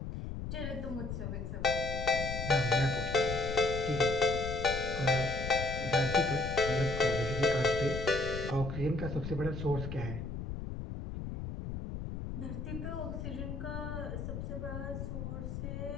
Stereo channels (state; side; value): noise; left; rumble, 6 dB below the sound